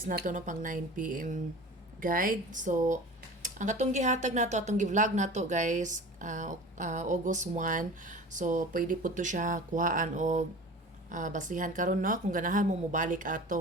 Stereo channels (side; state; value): both; normal; correlation 0.38